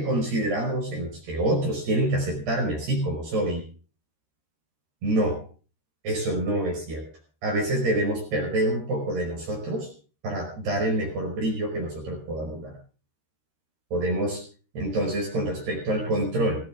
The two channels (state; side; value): late; left; 13 ms